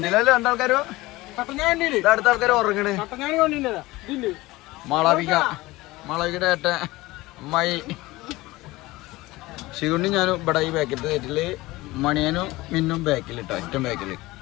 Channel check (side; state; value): right; quieter; 19.7 dB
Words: രണ്ടാൾക്കാരോ, അടുത്ത ആൾക്കാർ ഉറങ്ങണ്. മാളവികയുടെ ഏട്ടൻ അമ്മായി ശിവണ്ണി ഞാനും ഇവിടെ ഈ ബാക്കിലത്തെ സീറ്റില്, മണിയനും മിന്നും ബാക്കിൽ ഇട്ടോ, ഏറ്റവും ബാക്കിൽ.